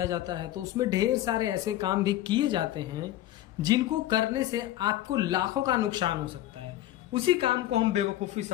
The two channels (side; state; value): right; quieter; 14.1 dB